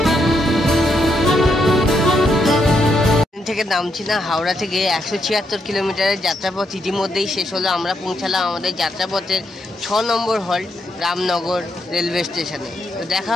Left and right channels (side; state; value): both; normal; correlation 0.79